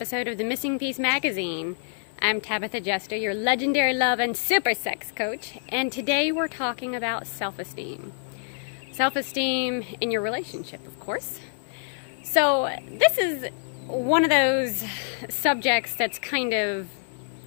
of the Missing Piece magazine. I'm Tabitha Jester, your legendary love and super sex coach, and today we're talking about self-esteem. Self-esteem in your relationship, of course. So this is one of those subjects that's kind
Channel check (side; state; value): right; silent; 60 dB below the other